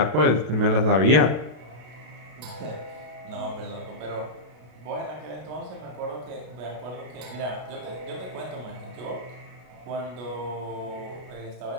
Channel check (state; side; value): late; left; 33 ms